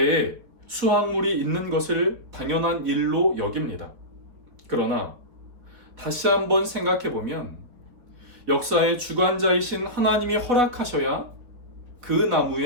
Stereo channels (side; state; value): left; late; 4.2 ms